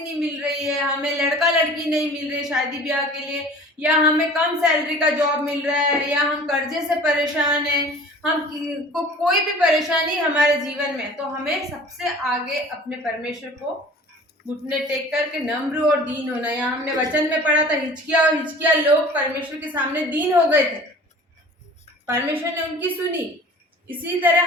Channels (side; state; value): both; normal; correlation 0.45